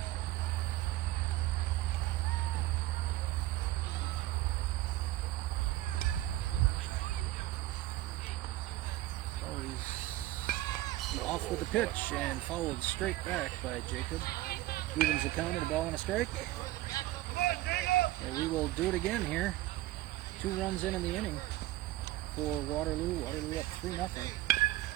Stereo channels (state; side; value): quieter; left; 16.4 dB